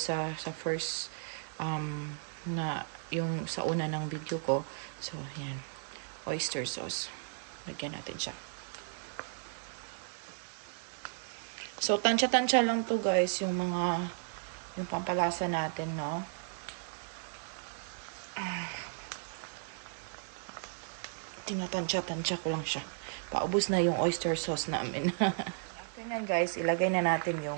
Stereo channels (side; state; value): left; silent; digital silence